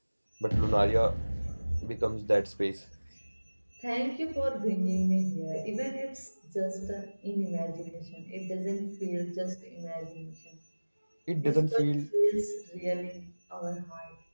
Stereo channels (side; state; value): both; inverted; correlation -1.00